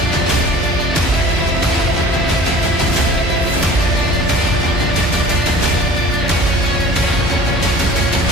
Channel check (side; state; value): both; normal; correlation 0.44